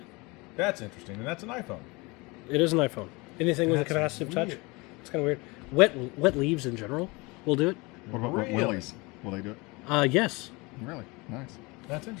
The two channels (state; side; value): quieter; right; 25.5 dB